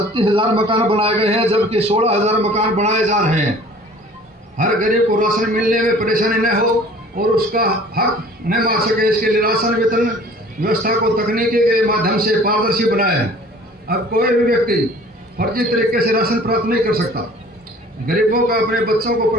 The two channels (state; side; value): normal; both; correlation 0.49